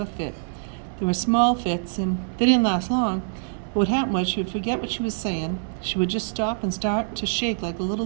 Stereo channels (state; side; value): silent; left; 62 dB below the other